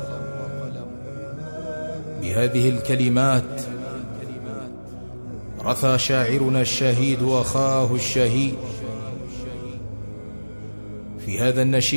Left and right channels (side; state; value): both; inverted; correlation -1.00